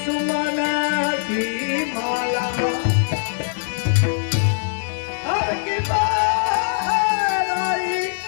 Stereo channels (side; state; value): right; silent; digital silence